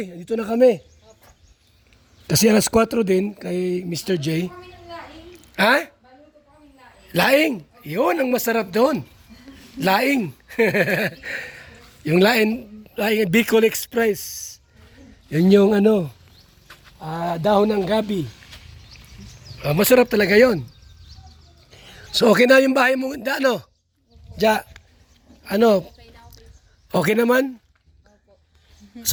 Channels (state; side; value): identical; both; correlation 1.00